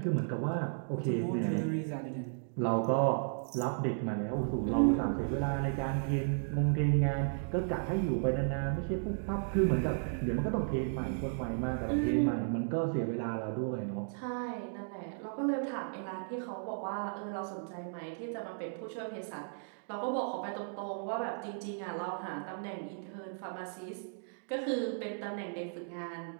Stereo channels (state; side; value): silent; left; digital silence